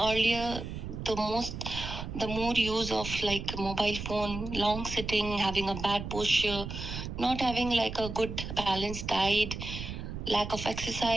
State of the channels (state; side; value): noise; right; rumble, 7 dB below the sound